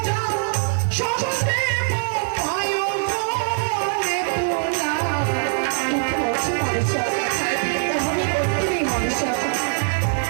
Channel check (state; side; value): silent; left; digital silence